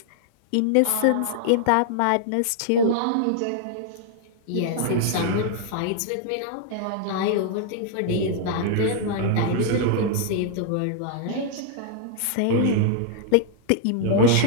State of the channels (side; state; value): both; different; correlation -0.01